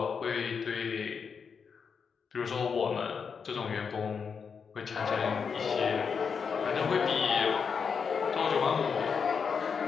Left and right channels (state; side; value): quieter; right; 6.1 dB